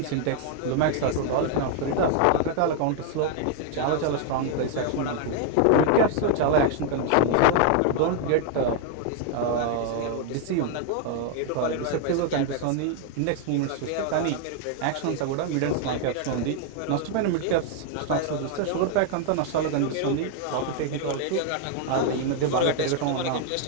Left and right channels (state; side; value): different; both; correlation 0.00